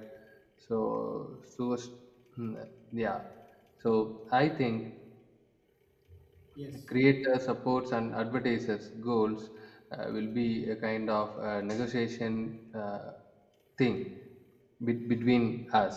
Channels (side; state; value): both; identical; correlation 1.00